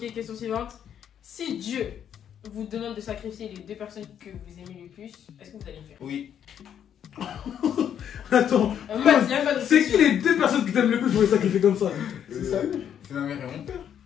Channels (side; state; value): right; quieter; 9.2 dB